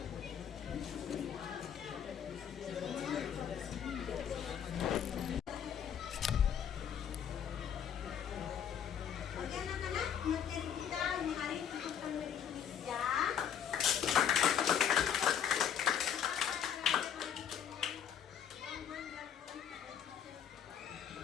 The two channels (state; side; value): quieter; right; 8.6 dB